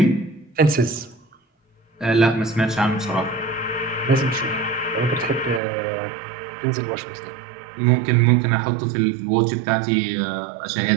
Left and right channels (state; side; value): drops out; left; at 5.6 s